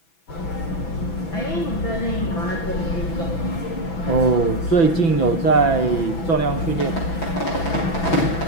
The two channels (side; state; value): right; late; 6.0 ms